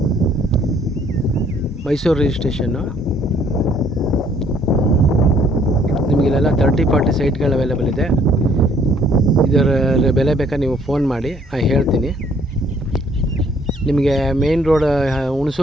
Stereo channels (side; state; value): both; normal; correlation 0.62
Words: ಮೈಸೂರು ರಿಜಿಸ್ಟ್ರೇಷನ್ನು. ನಿಮಗಿಲ್ಲೆಲ್ಲ 30-40 ಸೈಟ್ಗಳು ಅವೈಲೇಬಲ್ ಇದೆ. ಇದರ ಬೆಲೆ ಬೇಕಾದ್ರೆ ನೀವು ಫೋನ್ ಮಾಡಿ, ನಾನು ಹೇಳ್ತೀನಿ. ನಿಮಗೆ ಮೇನ್ ರೋಡ್